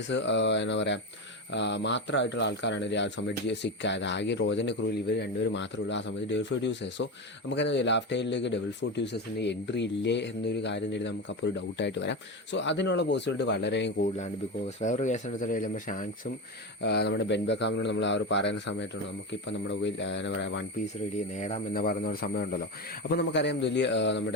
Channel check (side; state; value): both; normal; correlation 0.19